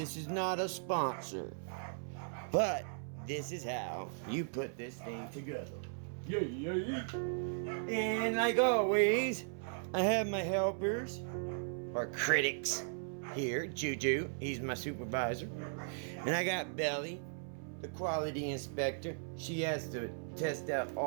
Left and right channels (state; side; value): silent; left; 53 dB below the other